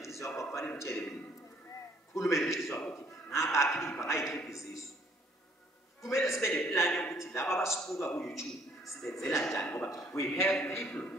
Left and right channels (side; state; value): both; normal; correlation 0.62